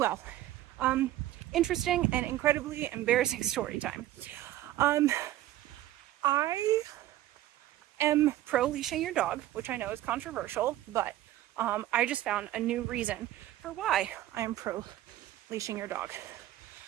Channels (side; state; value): left; quieter; 14.4 dB